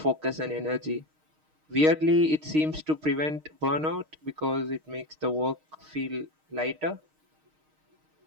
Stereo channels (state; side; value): late; left; 6.5 ms